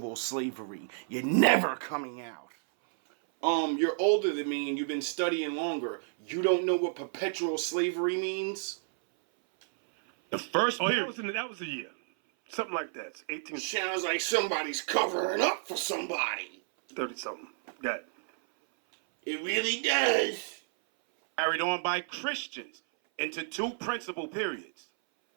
slavery. You're never coming out. You're older than me and you've been studying longer. You don't know what perpetual slavery means? The first Oh, period. that was a year. Something like that. It's 1830 Sounds like somebody's covering up for somebody. something. Got it. It really does. Carried on by Christians into two principal periods.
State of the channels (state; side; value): silent; left; 57 dB below the other